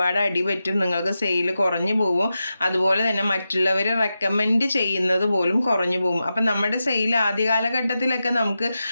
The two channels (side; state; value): both; inverted; correlation -0.90